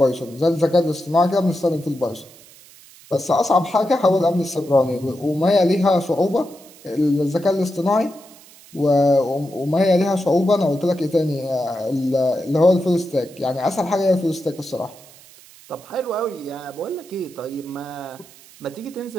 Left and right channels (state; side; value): noise; right; hiss, 23 dB below the sound